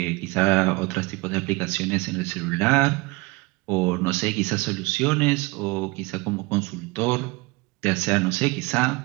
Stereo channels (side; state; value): left; quieter; 24.2 dB